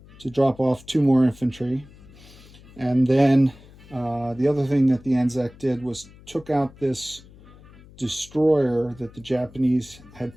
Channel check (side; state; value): left; noise; hum, 22 dB below the sound